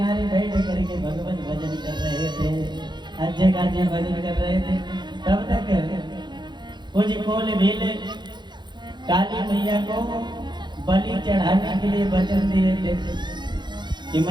बैठ करके भगवत भजन कर रहे थे, अच्छे खासे भजन कर रहे थे। तब तक कुछ कोल भील काली मैया को बलि चढ़ाने के लिए वचन दिए थे कि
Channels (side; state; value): left; late; 0.21 ms